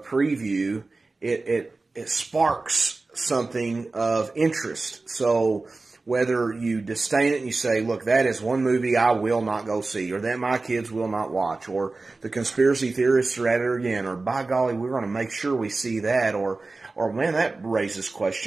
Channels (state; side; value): quieter; left; 3.5 dB